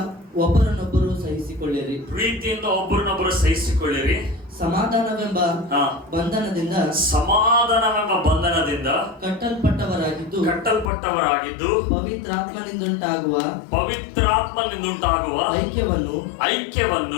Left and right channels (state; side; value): drops out; right; at 10.9 s